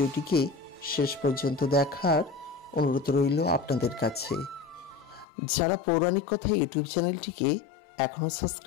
শেষ পর্যন্ত দেখার অনুরোধ রইল আপনাদের কাছে। যারা পৌরাণিক কথা ইউটিউব চ্যানেলটিকে এখনও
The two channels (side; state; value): right; drops out; at 5.2 s